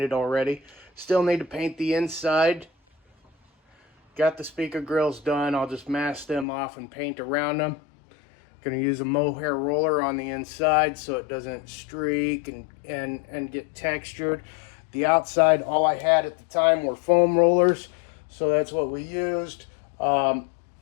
already. Still need to paint the inside. Got the speaker grills done. I'll just mask them off and paint around them. Going to use a mohair roller on the inside so it doesn't streak and get textured. The outside, all I had at the time were foam rollers, so that's what we used.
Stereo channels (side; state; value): right; drops out; at 6.5 s